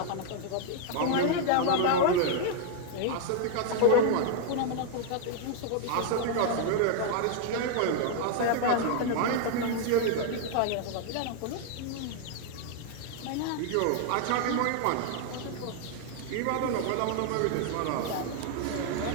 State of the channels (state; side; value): different; both; correlation 0.00